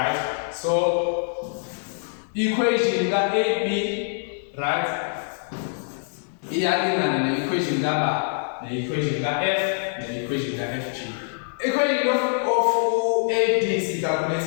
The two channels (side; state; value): right; silent; digital silence